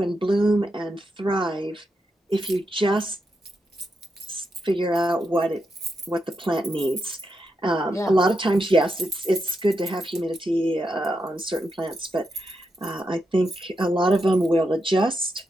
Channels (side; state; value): both; normal; correlation 0.84